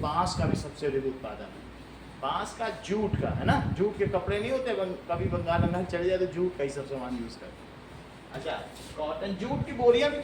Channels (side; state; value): both; identical; correlation 1.00